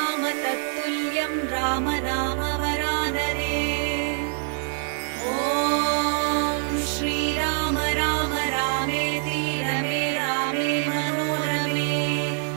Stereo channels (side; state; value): left; silent; 62 dB below the other